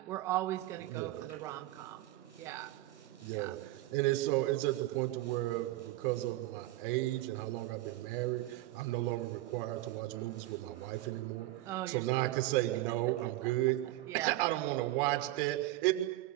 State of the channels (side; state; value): left; quieter; 16.7 dB